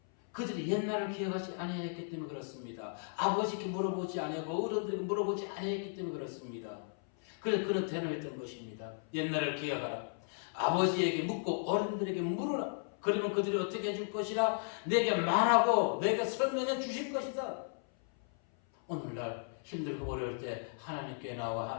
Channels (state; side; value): silent; right; 54 dB below the other